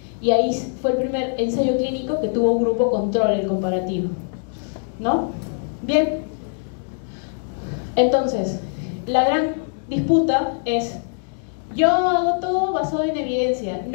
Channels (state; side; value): silent; right; 64 dB below the other